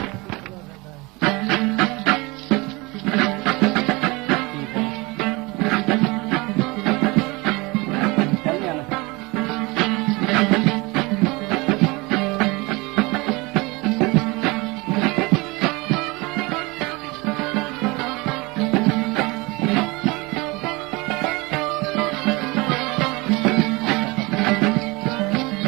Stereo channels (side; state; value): left; quieter; 24.7 dB